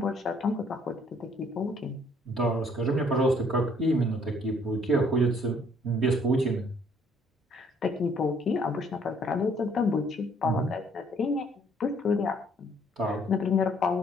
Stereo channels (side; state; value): both; normal; correlation 0.63